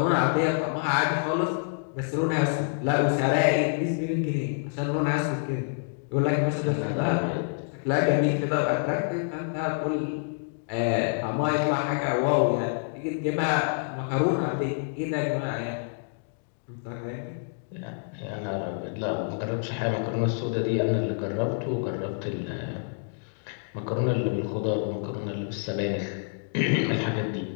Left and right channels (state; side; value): silent; right; digital silence